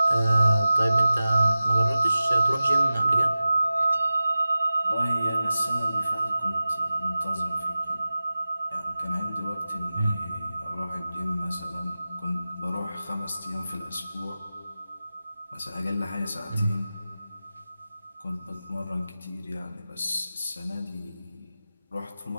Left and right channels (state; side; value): inverted; both; correlation -0.95